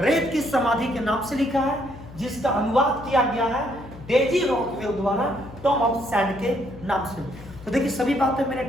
की समाधि के नाम से लिखा है, जिसका अनुवाद किया गया है डेजी रॉकवेल द्वारा टॉम ऑफ सैंड के नाम से। तो देखिए सभी बातें मैंने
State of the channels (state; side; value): noise; left; hum, 17 dB below the sound